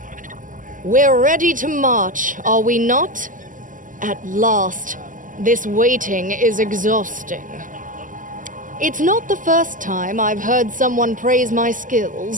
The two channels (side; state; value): left; late; 0.38 ms